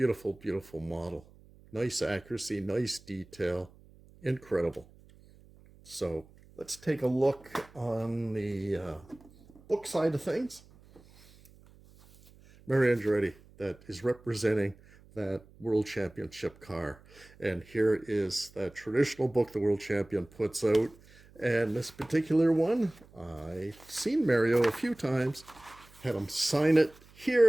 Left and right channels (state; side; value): noise; right; hum, 25 dB below the sound